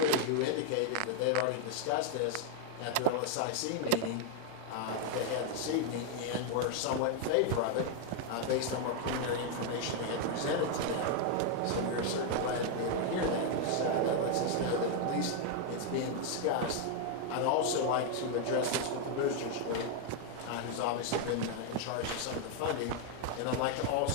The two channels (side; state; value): both; different; correlation 0.00